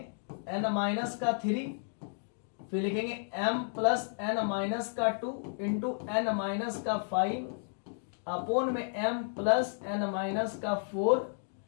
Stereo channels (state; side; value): silent; right; digital silence